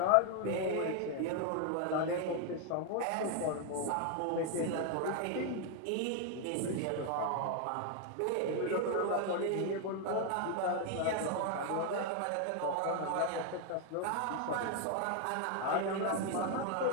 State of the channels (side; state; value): both; different; correlation 0.00